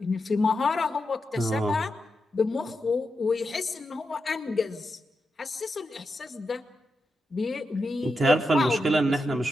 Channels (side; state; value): both; normal; correlation 0.87